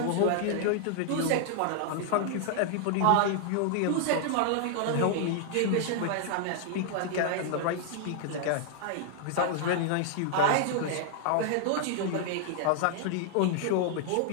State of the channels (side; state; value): both; different; correlation 0.00